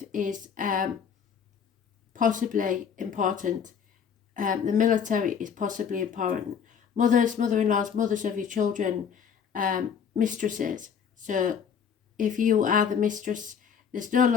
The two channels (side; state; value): right; quieter; 7.2 dB